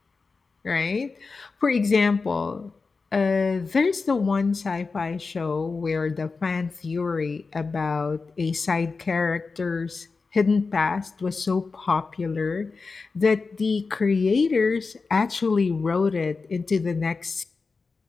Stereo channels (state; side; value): quieter; right; 4.3 dB